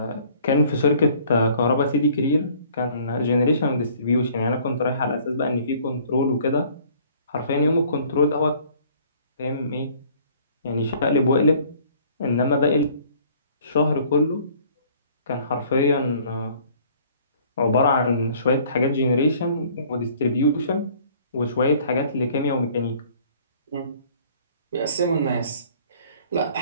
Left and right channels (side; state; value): both; inverted; correlation -0.55